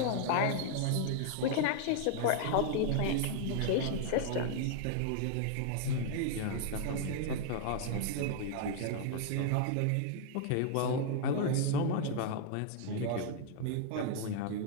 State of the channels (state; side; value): different; both; correlation 0.00